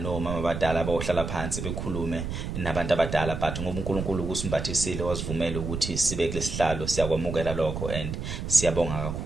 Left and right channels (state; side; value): noise; right; rumble, 5 dB below the sound